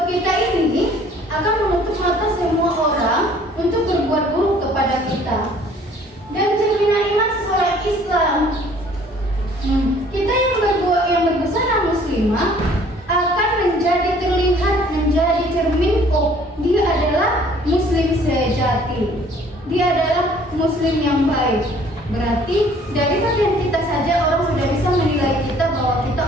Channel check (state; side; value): normal; both; correlation 0.56